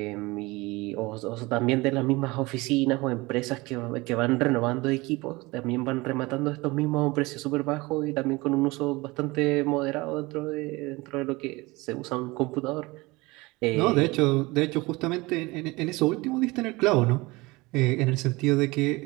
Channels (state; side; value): quieter; left; 22.7 dB